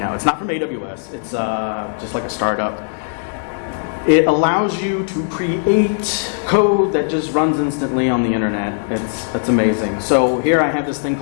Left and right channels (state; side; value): silent; right; digital silence